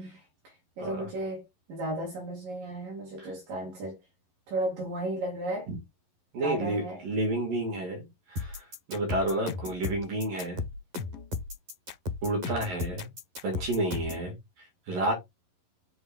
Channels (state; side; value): late; left; 11 ms